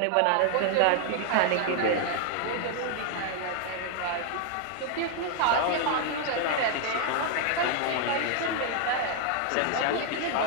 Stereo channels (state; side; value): different; both; correlation 0.00